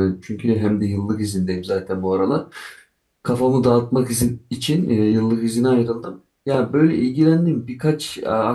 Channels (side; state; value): both; identical; correlation 1.00